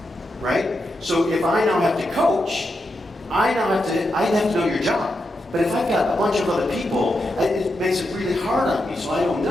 right? So if I now have to coach, I have to know your job. But if I've got a bunch of other people, it makes it really hard on me, so I don't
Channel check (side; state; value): both; normal; correlation 0.86